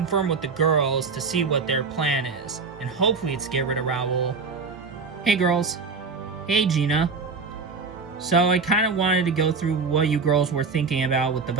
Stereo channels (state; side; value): quieter; left; 4.8 dB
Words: with the girls to see what their plan is, and hopefully it's get rid of Raul. Hey girls. Hey Gina. So I kind of wanted to go through what you girls were thinking about with the